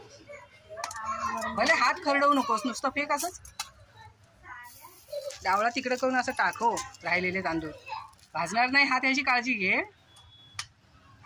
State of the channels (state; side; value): identical; both; correlation 1.00